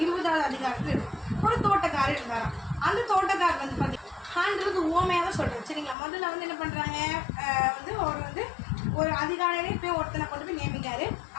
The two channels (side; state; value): right; drops out; at 6.0 s